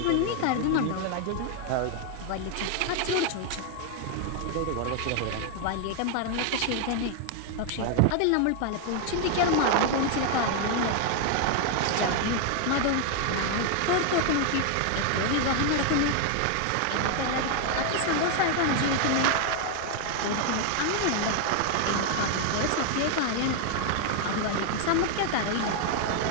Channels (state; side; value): different; both; correlation 0.00